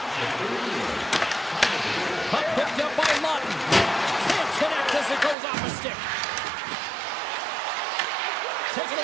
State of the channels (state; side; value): drops out; left; at 5.4 s